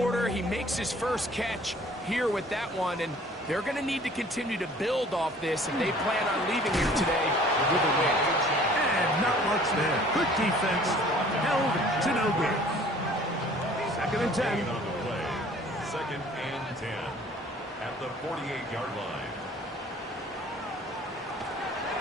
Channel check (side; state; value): both; normal; correlation 0.52